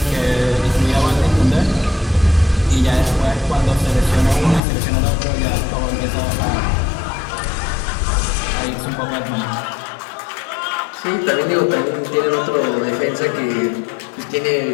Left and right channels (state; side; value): drops out; right; at 4.6 s